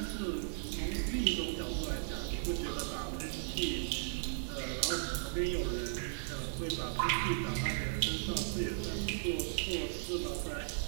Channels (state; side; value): silent; left; 53 dB below the other